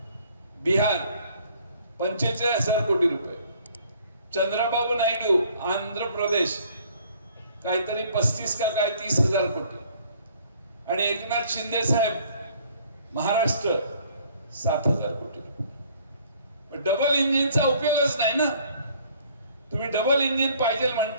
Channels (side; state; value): both; inverted; correlation -0.58